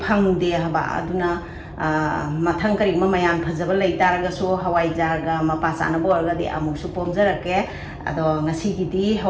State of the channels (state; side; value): identical; both; correlation 1.00